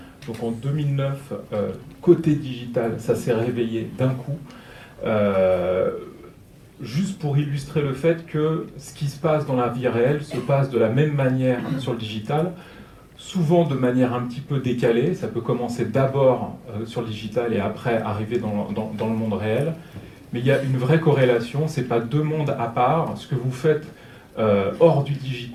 Donc en 2009, côté digital, ça s'est réveillé d'un coup. Juste pour illustrer le fait que ce qui se passe dans la vie réelle se passe de la même manière sur le digital, souvent de manière un petit peu décalée. Ça peut commencer d'abord sur le digital et après arriver dans le monde réel. Mais il y a une vraie corrélation, ce n'est pas deux mondes à part. Ce que vous faites hors du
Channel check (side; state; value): both; identical; correlation 1.00